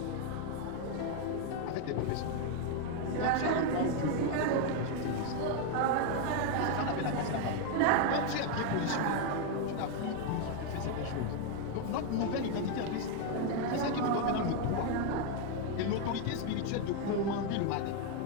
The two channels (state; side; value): different; both; correlation 0.01